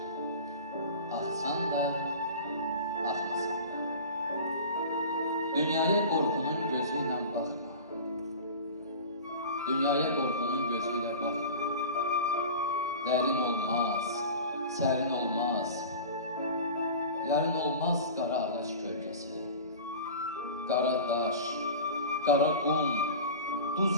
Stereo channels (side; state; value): both; inverted; correlation -0.35